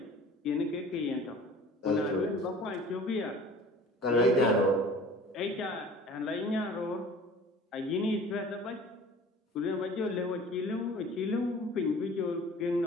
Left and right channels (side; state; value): both; normal; correlation 0.45